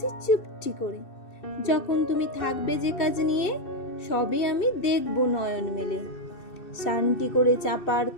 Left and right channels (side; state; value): right; late; 2.6 ms